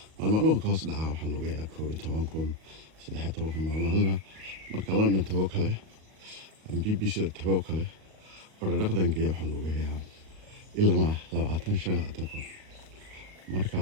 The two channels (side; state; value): left; late; 38 ms